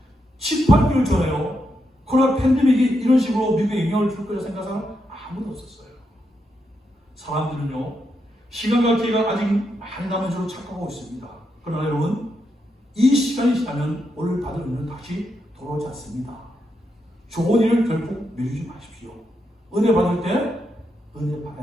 18개월 전에요 코로나 팬데믹이 이런 식으로 미국에 영향을 줄 거라 생각하는 사람 아무도 없었어요. 사람들은요 시간과 기회가 아직 많이 남은 줄로 착각하고 있습니다. 그러나 여러분, 이 시간이 지나면 오늘 받을 은혜는 다시 돌아오지 않습니다. 좋은 일을 결국 미루지 마십시오. 은혜 받을 때 은혜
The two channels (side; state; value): both; normal; correlation 0.83